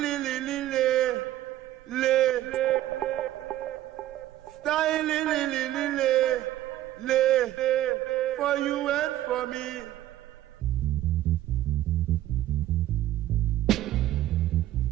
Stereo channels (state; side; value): quieter; left; 14.0 dB